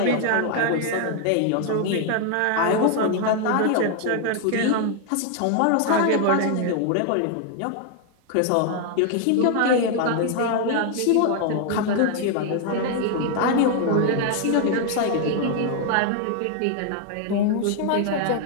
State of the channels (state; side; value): different; both; correlation 0.00